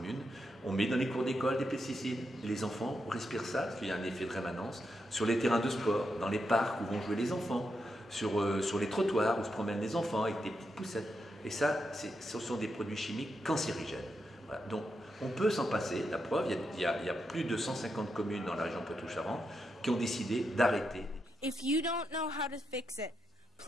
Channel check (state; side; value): normal; both; correlation 0.84